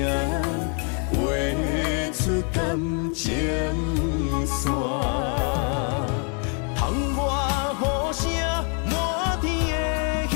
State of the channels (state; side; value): quieter; right; 39.8 dB